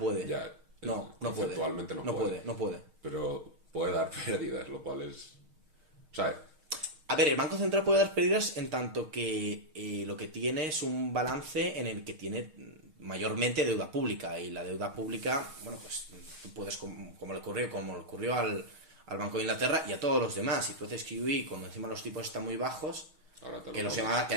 Ya, no conceptualmente puede. No puede. Pero puede dar pérdidas, lo cual es... O sea... A ver, el Banco Central puede dar pérdidas en tanto que lo que tiene es un balance en el que tiene mayormente deuda pública. Y la deuda pública, bueno, pues tú puedes, como le ocurrió al Banco de Inglaterra y a todos los demás. Si tú haces QE, cuando encima los tipos están muy bajos, que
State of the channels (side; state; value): left; late; 6.4 ms